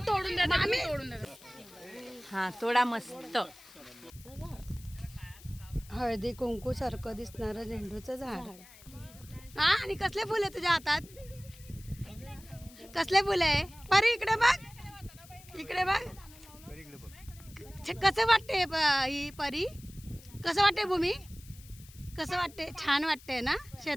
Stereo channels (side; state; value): left; noise; hiss, 21 dB below the sound